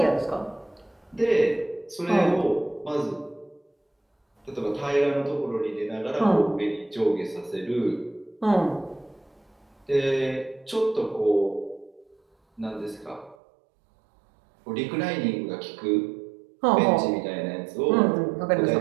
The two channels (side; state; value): left; drops out; at 13.4 s